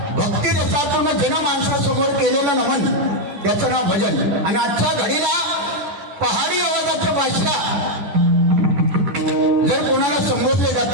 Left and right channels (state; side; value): late; left; 11 ms